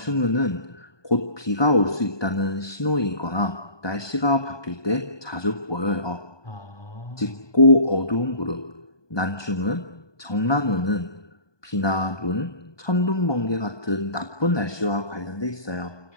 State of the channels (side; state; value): right; late; 1.2 ms